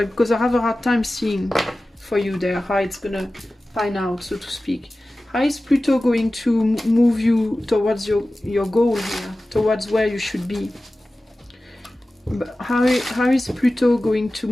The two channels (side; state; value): both; normal; correlation 0.96